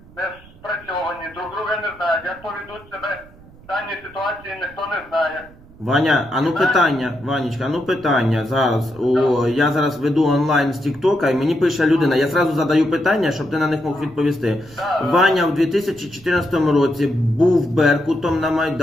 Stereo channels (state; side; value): noise; right; rumble, 23 dB below the sound